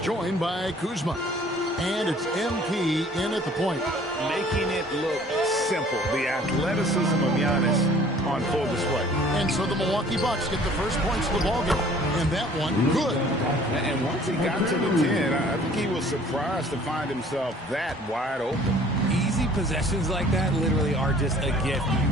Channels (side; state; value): both; normal; correlation 0.53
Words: joined by Kuzma. And it's MP in at the point. Making it look simple. The athleticism of Giannis on full display. And so the Milwaukee Bucks get the first points of the ballgame. And that one, good. And once he got to the 10, I think he was surprised to find himself that wide open. Easy possessions like that literally are just a gift.